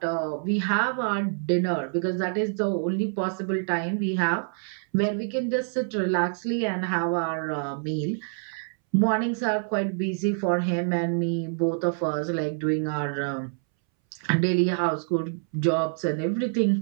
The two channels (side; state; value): left; silent; 61 dB below the other